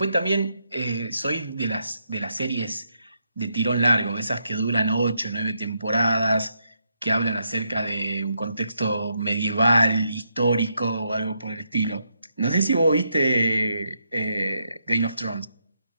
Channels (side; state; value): both; inverted; correlation -0.80